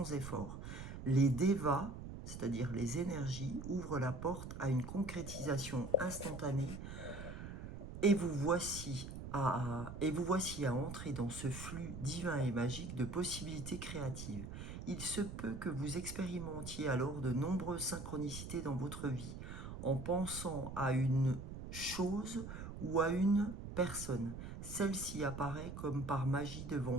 effort. Les devas, c'est-à-dire les énergies, ouvrent la porte à une concrétisation instantanée et vous voici à entrer dans ce flux divin et magique de possibilités créatives. Il se peut que vous expérimentiez alors de nombreuses synchronicités dans votre vie, en pensant à une chose ou à une personne. Celle-ci apparaît comme par magie devant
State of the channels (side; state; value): right; noise; rumble, 9 dB below the sound